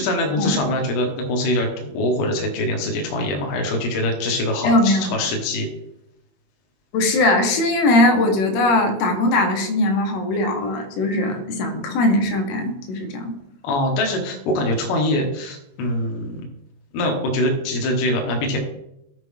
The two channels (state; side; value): late; right; 21 ms